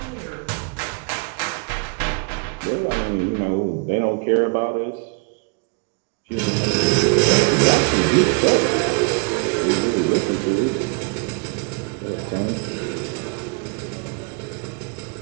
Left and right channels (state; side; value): quieter; left; 32.8 dB